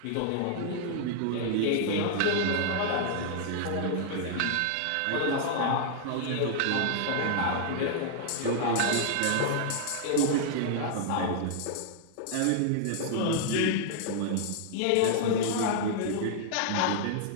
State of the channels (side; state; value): both; different; correlation -0.01